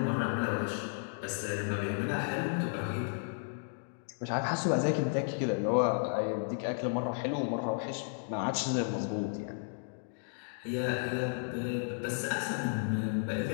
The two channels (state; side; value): silent; right; digital silence